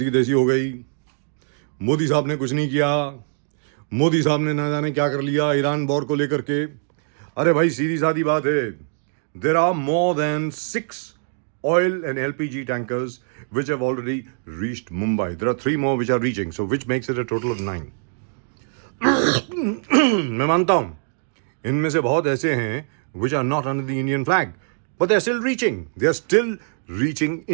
तैसी हो गई, मोदी साहब ने कुछ नहीं किया, मोदी साहब ने ना जाने क्या कर लिया ईरान वॉर को लेकर के। अरे भाई, सीधी सादी बात है, there are more than 6 oil and LPG tankers which have already reached Mumbai. There are 3 more which are reaching, so which makes it a total of 9. मैं मानता हूं इनमें से बहुत ऐसे हैं which are not under the Indian flag, but they are still reaching. They are still reaching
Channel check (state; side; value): silent; left; 64 dB below the other